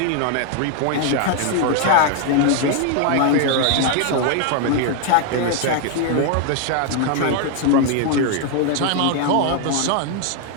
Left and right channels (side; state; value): both; different; correlation 0.00